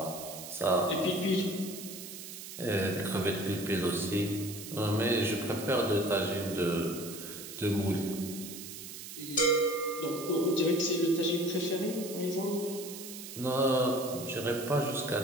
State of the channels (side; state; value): right; noise; hiss, 11 dB below the sound